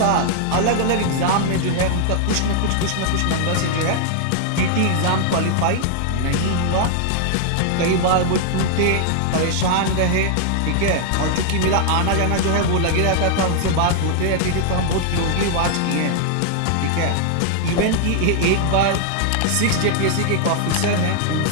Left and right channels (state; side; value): different; both; correlation -0.01